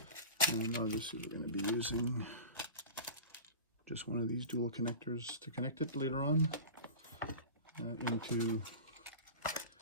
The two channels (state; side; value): inverted; both; correlation -0.32